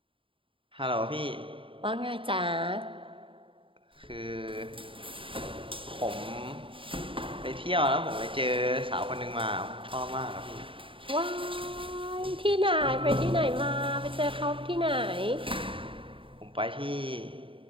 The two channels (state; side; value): late; left; 0.25 ms